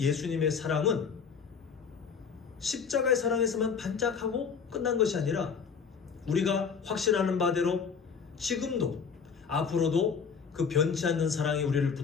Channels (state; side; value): quieter; right; 6.1 dB